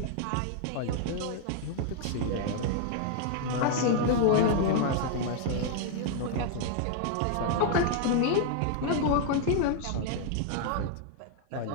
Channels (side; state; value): both; different; correlation 0.00